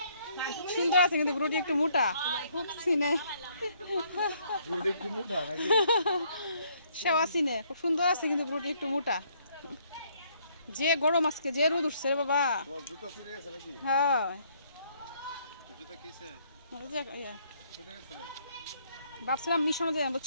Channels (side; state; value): both; inverted; correlation -0.67